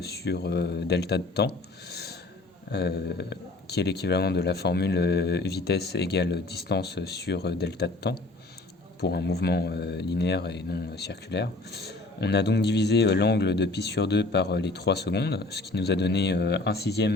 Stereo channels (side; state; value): right; quieter; 3.0 dB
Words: sur delta de temps, qui est l'équivalent de la formule vitesse égale distance sur delta de temps, pour un mouvement linéaire et non circulaire. On a donc divisé l'angle de pi sur 2 par les 3 secondes, ce qui nous a donné